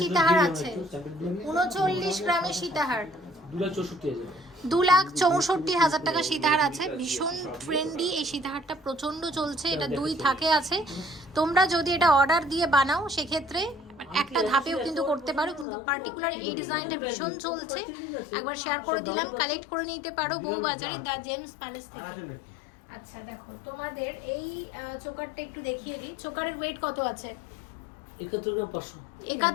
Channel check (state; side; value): drops out; right; at 15.7 s